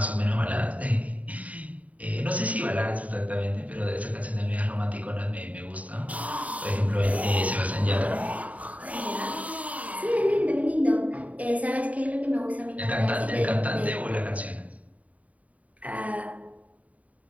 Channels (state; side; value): late; left; 0.070 ms